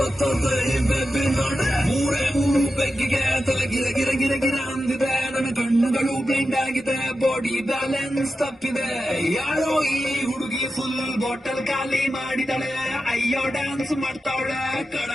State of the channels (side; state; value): both; normal; correlation 0.91